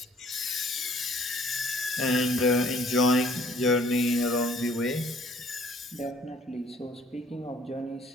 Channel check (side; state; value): both; normal; correlation 0.58